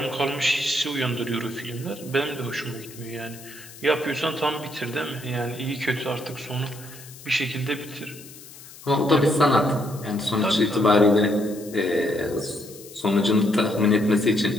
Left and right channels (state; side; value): noise; left; hiss, 18 dB below the sound